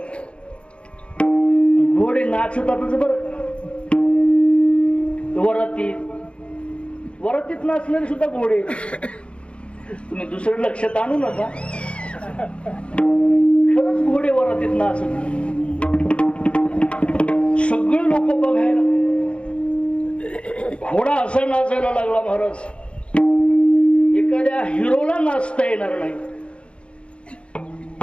घोडे नाचतातच बरं. वरातीत नाचणारे सुद्धा घोडे. तुम्ही दुसरं लक्षात आणू नका, खरंच घोडे वरातीत नाचत. सगळे लोक बघायला. घोडा असा नाचायला लागला महाराज, एखाद्या हिरोला नाचता येणार नाही.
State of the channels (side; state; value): right; late; 0.059 ms